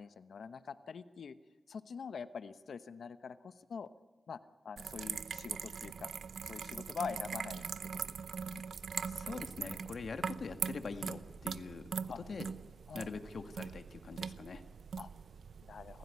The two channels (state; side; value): normal; both; correlation 0.81